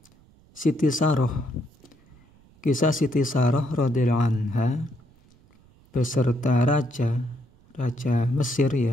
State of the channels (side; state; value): right; noise; rumble, 29 dB below the sound